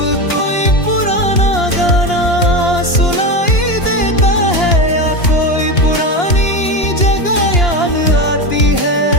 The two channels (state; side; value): late; right; 2.9 ms